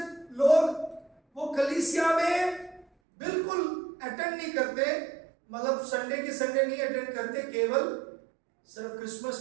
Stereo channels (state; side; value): drops out; left; at 2.9 s